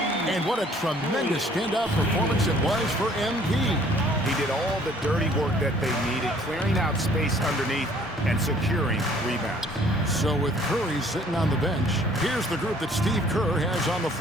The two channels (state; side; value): normal; both; correlation 0.58